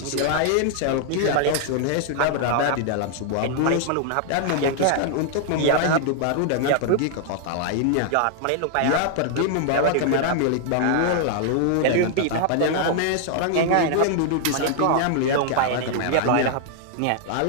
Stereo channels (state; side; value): different; both; correlation 0.00